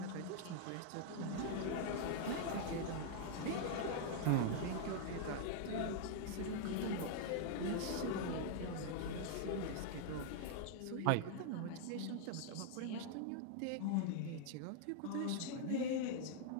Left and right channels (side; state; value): both; different; correlation -0.01